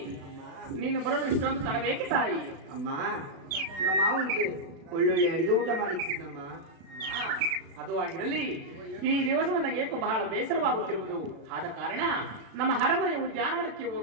ನೀನು ಬರಲು ಇಷ್ಟೊಂದು ತಡಬೇಕೆ ತಾಯಿ? ಅಮ್ಮ ನಮ್ಮ ಮಾವನಿಗೆ ಒಳ್ಳೊಳ್ಳೆ ಅಡಿಗೆ ಊಟ ಮಾಡಿಸಿದ್ದಮ್ಮ. ಅದು ಆಗಿರಲಿ, ಈ ದಿವಸ ನನಗೆ ಬಹಳ ಬೇಸರವಾಗುತ್ತಿರುವುದು. ಆದ ಕಾರಣ ನಮ್ಮ ಅರಮನೆ ಉದ್ಯಾನವನಕ್ಕೆ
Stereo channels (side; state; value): left; late; 36 ms